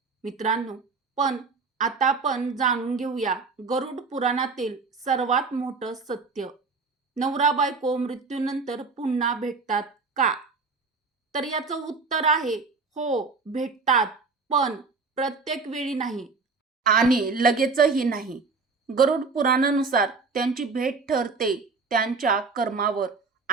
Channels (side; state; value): left; quieter; 4.5 dB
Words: मित्रांनो, पण आता आपण जाणून घेऊया गरुड पुराणातील सर्वात मोठं सत्य. नवरा बायको मृत्यूनंतर पुन्हा भेटतात का? तर याचं उत्तर आहे हो, भेटतात, पण प्रत्येक वेळी नाही आणि लगेचही नाही. गरुड पुराणानुसार त्यांची भेट ठरते त्यांच्या कर्मावर